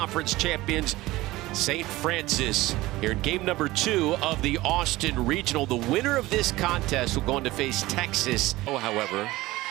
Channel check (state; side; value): quieter; left; 18.5 dB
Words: champions, St. Francis, here in game number 2 of the Austin Regional. The winner of this contest will go on to face Texas. However,